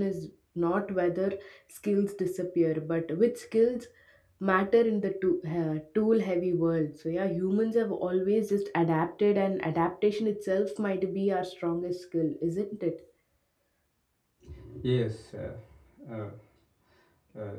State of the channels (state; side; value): identical; both; correlation 1.00